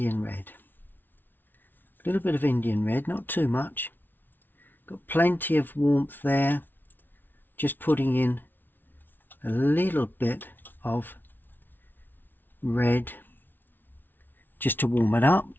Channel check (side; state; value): right; late; 0.092 ms